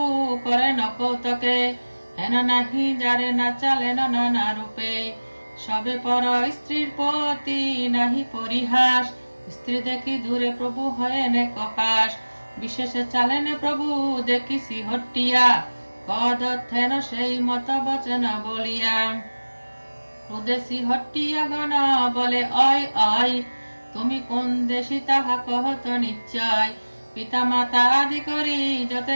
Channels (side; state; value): both; inverted; correlation -1.00